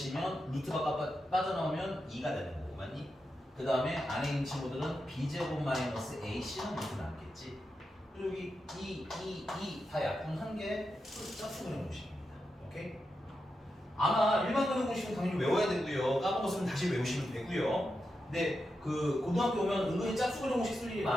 루트가 빠져나오면 2가 되는 거고, 맞니? 그 다음에 안에 있는 친구들은 b제곱 마이너스 ac는 루트 남겠지. 그리고 여기 2 다 약분한 게 짝수 근의 공식입니다. 오케이? 아마 일반 근의 공식은 당연히 외워야 되고요. 까먹었으면 다시 외우시면 되고요. 근데 그 고등학교 오면 은근히 짝수 근의 공식 쓸 일이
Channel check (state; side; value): normal; both; correlation 0.88